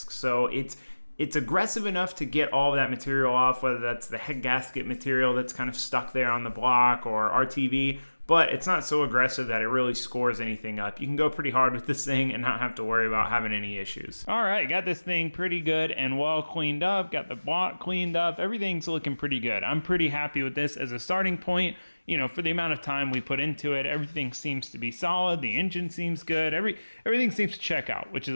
So it's aggressive enough to get all of that material off, whether that's the head gasket material that's kind of stuck there on the block or RTV, but it's not so aggressive that it really scores anything up. You can go pretty hard with this thing and not have to worry about having any issues. All right, got this thing pretty good and well cleaned up, got the block cleaned up, everything's looking pretty good. I'm pretty happy with this as a starting point. You know, for the amount of time we put into it, everything seems to be solid. The engine seems good. Everything seems to check out, which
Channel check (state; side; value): inverted; both; correlation -1.00